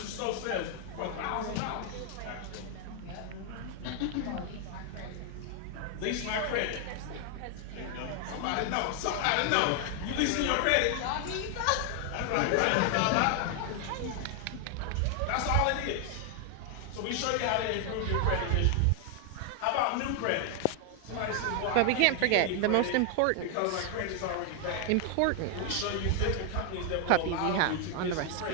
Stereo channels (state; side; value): different; both; correlation 0.00